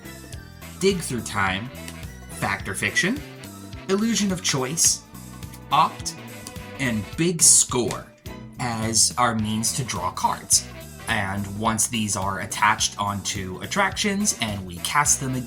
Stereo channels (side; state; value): both; identical; correlation 1.00